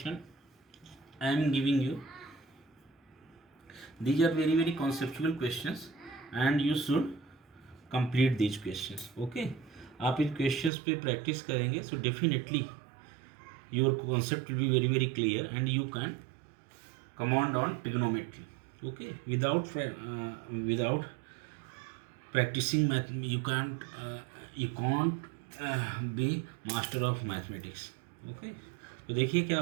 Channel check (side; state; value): left; drops out; at 10.7 s